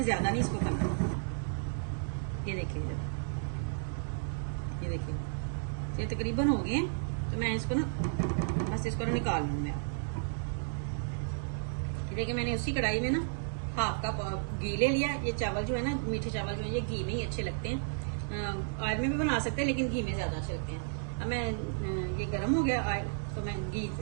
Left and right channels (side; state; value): left; silent; digital silence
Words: ज्यादा नहीं इसको करना। ये देखिए ये देखिए ये तकरीबन हो गए हैं, तो मैं इसको ना बस इसको ना निकाल लूंगा। ये देखिए मैंने उसी कढ़ाई में ना हाफ कप घी ले लिया। ये चावल जो है ना मीठे चावल जो है ये घी में ही अच्छे लगते हैं, ऑयल में भी बना सकते हैं लेकिन घी में ज्यादा अच्छे लगते हैं। अब मैं ये गर्म हो गया ऑयल, तो मैं घी